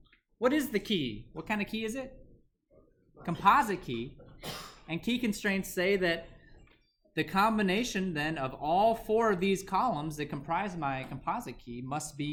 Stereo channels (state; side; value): identical; both; correlation 1.00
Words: What is the key? What kind of key is it? Composite key. And key constraints say that the combination then of all 4 of these columns that comprise my composite key must be